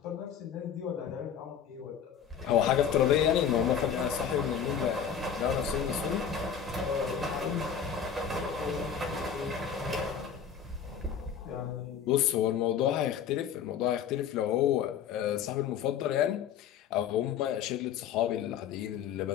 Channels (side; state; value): right; quieter; 8.0 dB